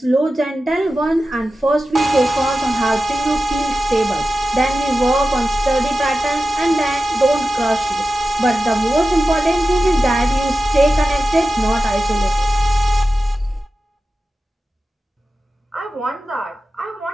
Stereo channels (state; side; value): normal; both; correlation 0.93